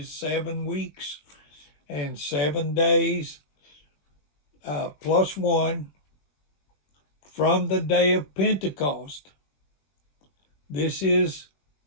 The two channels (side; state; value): right; late; 21 ms